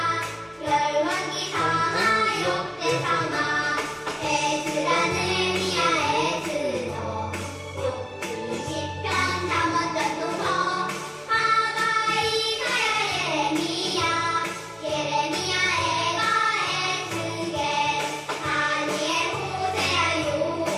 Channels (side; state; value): both; identical; correlation 1.00